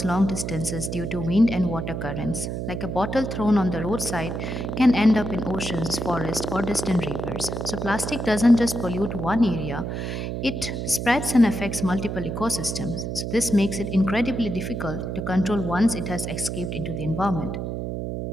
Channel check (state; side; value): noise; right; hum, 4 dB below the sound